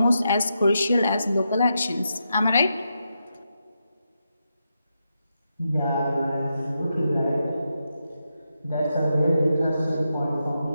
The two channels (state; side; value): inverted; both; correlation -0.85